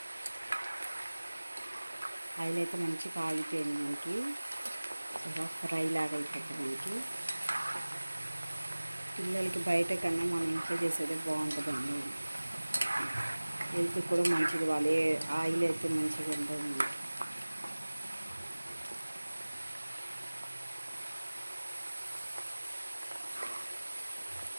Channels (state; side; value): inverted; both; correlation -1.00